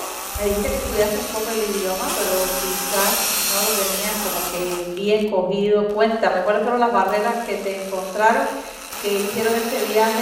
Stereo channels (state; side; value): identical; both; correlation 1.00